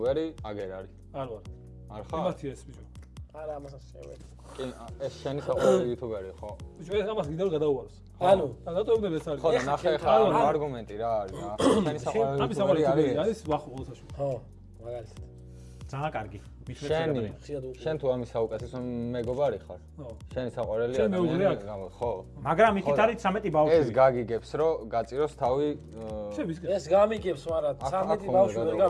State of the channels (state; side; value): identical; both; correlation 1.00